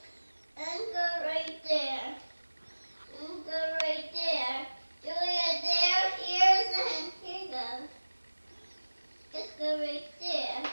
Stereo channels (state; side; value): inverted; both; correlation -1.00